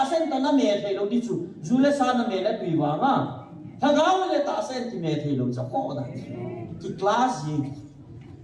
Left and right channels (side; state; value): both; identical; correlation 1.00